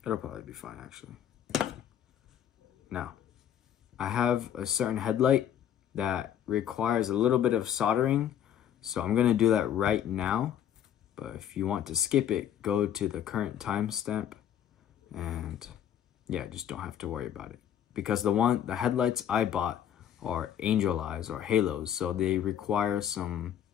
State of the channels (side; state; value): right; quieter; 10.0 dB